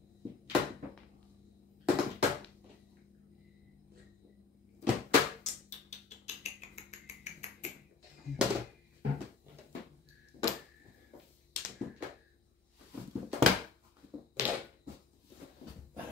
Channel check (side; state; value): right; quieter; 4.9 dB